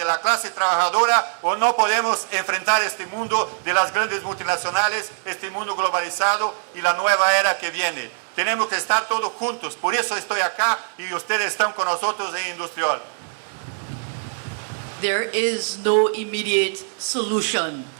la clase trabajadora, o no podemos enfrentar este mundo de las grandes multinacionales, este mundo globalizado y la nueva era que viene. Tenemos que estar todos juntos, por eso estoy acá y ustedes están con nosotros en Industrial. There is no immediate solution.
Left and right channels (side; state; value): left; silent; digital silence